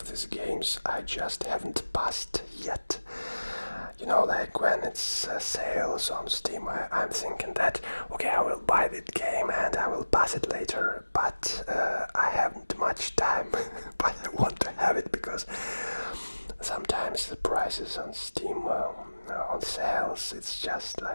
these games I just haven't passed yet. You know, like when it's sales on Steam, I'm thinking that, okay, I will buy that game and I will pass it later, but I haven't much time, but I want to have it because sometimes the prices on Steam on sales, it's just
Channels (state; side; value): inverted; both; correlation -1.00